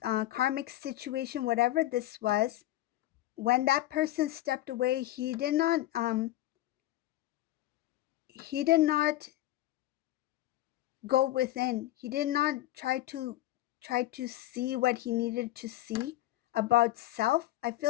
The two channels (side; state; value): right; quieter; 15.4 dB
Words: karmic situation, whatever this was, when that person stepped away, he did not go within. He did not try to see what he needed to see about self. I